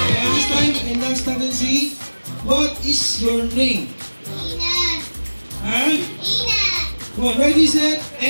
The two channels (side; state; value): both; inverted; correlation -1.00